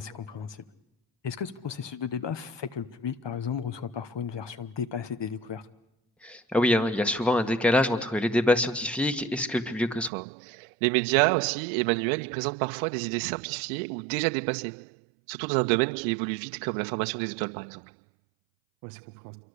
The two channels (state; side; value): drops out; left; at 10.1 s